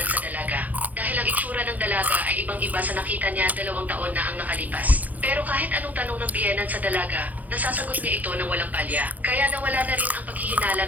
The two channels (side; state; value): left; late; 0.079 ms